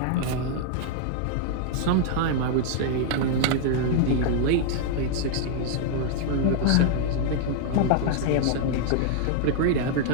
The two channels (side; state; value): both; different; correlation -0.01